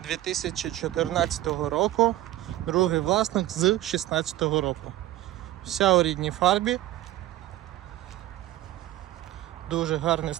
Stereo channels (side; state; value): left; quieter; 15.2 dB